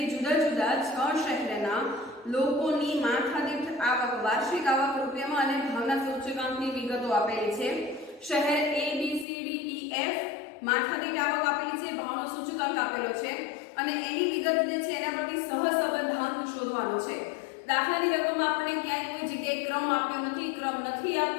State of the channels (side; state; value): right; drops out; at 9.2 s